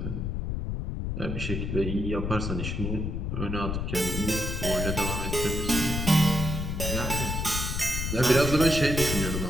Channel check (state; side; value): noise; left; rumble, 2 dB below the sound